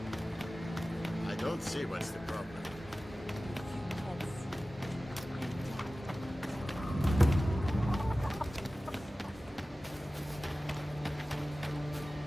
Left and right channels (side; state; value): both; normal; correlation 0.96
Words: I don't see what's the problem.